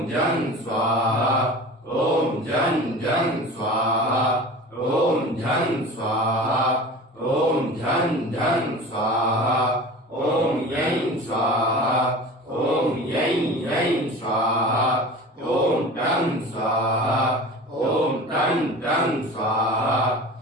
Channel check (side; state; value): both; normal; correlation 0.37